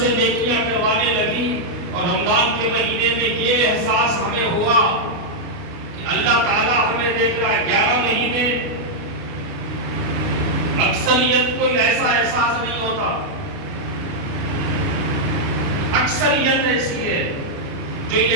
نیکیاں کروانے لگی۔ اور رمضان کے مہینے میں یہ احساس ہمیں ہوا کہ اللہ تعالیٰ ہمیں دیکھ رہا ہے۔ 11 مہینے اکثریت کو ایسا احساس نہیں ہوتا، اکثریت ایسی ہے جو یہ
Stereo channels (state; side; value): late; left; 29 ms